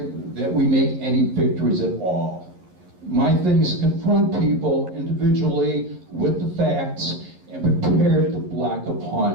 that we make any victories at all. My thing is to confront people individually with the facts and prepare to block a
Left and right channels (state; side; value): late; left; 11 ms